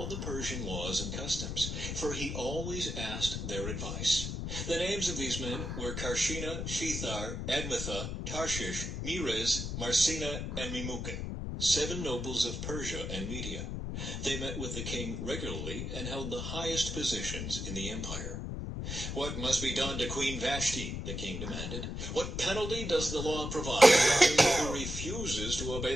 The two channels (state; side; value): noise; left; rumble, 4 dB below the sound